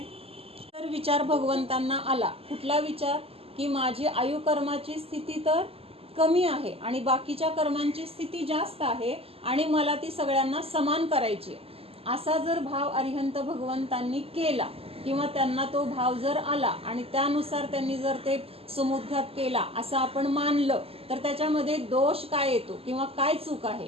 तर विचार भगवंतांना आला, कुठला विचार, की माझी आयुकर्माची स्थिती तर कमी आहे आणि बाकीच्या कर्मांची स्थिती जास्त आहे आणि मला ती सगळ्यांना समान करायची. असा जर भाव अरिहंत भगवंतांनी केला किंवा त्यांना तो भाव जर आला आणि त्यानुसार त्यांनी जर ते समुद्घात केला असं आपण मानलं, तर त्याच्यामध्ये दोष काय येतो किंवा काय चूक आहे.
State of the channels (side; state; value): left; late; 0.28 ms